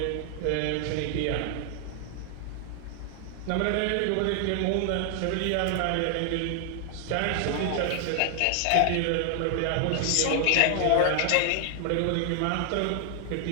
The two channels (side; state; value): both; different; correlation 0.00